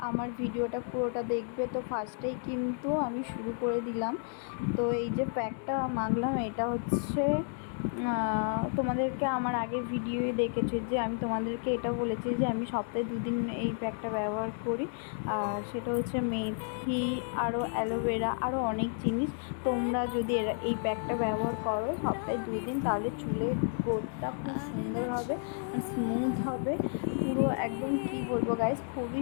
আমার ভিডিওটা পুরোটা দেখবে। তো ফার্স্টেই কিন্তু আমি শুরু করে দিলাম। তো এই যে প্যাকটা মাখলাম, এটা হচ্ছে তোমাদেরকে আমার আগের ভিডিওয়ে দেখেছি যে আমি তোমাদেরকে এটা বলেছি যে আমি সপ্তাহে 2 দিন এই প্যাকটা ব্যবহার করি। আর সেটা হচ্ছে মেথি, আরও অ্যালোভেরা, আরও অনেক জিনিস। তোমরা যদি এই প্যাকটা ব্যবহার করো সপ্তাহে 2 দিন, তাহলে চুলের গ্রোথটা খুব সুন্দর হবে আর স্মুথ হবে পুরো একদম। কি বলবো গাইজ, খুবই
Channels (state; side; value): silent; right; 57 dB below the other